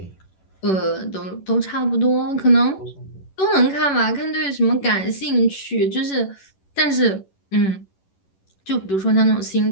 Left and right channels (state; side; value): late; right; 11 ms